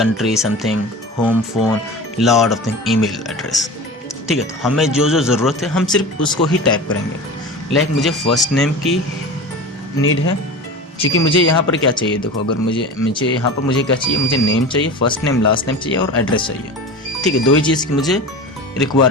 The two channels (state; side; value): normal; both; correlation 0.32